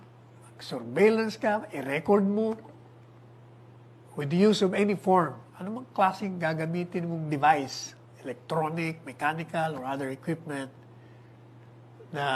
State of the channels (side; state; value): both; identical; correlation 1.00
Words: mag-surveillance ka, i-record mo with the use of any form. Ano mang klaseng gagamitin mong device, electronic, mechanical, or other equipment